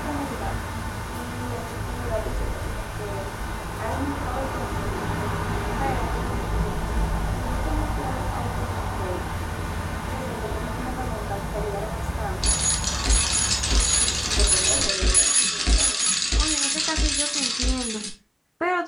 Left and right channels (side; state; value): both; identical; correlation 1.00